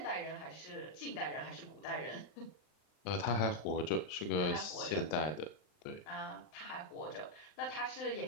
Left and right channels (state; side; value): late; right; 39 ms